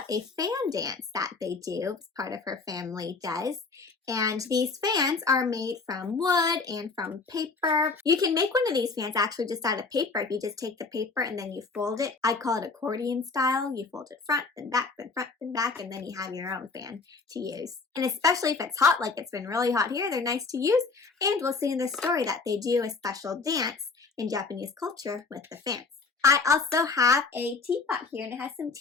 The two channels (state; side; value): quieter; right; 4.4 dB